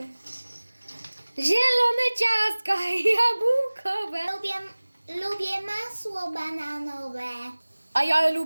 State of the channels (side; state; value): both; inverted; correlation -1.00